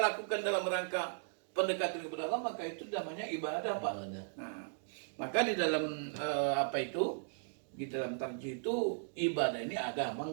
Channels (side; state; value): left; silent; digital silence